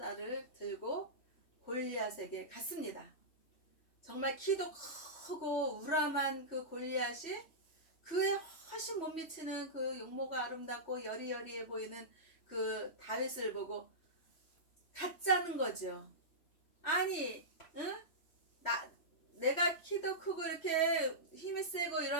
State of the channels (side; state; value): right; late; 3.1 ms